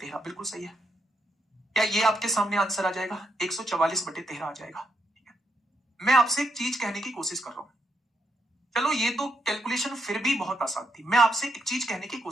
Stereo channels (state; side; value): normal; both; correlation 0.80